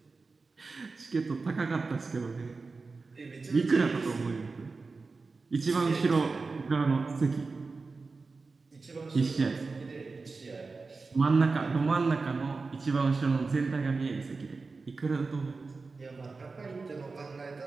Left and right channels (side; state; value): left; quieter; 4.1 dB